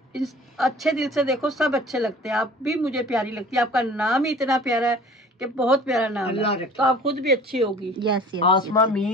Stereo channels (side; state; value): both; normal; correlation 0.46